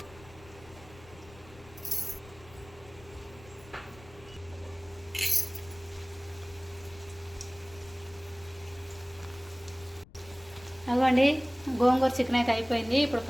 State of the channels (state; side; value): noise; left; rumble, 21 dB below the sound